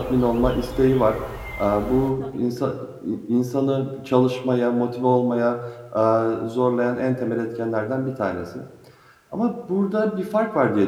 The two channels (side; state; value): both; identical; correlation 1.00